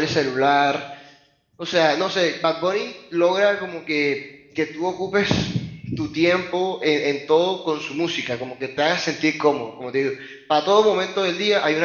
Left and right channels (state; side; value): identical; both; correlation 1.00